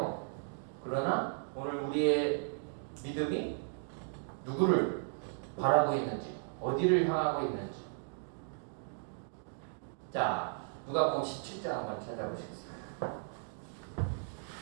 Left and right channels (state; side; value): silent; left; digital silence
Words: 그러나 오늘 우리의 믿음이 누구를 바라고 있는지, 어디를 향하고 있는지. 자, 누가복음 17장 한번 찾아보시겠습니다.